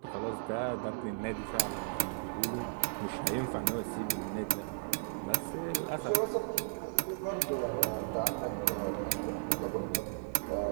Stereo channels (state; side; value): silent; left; digital silence